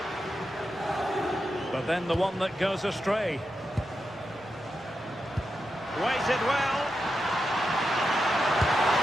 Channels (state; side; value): normal; both; correlation 0.87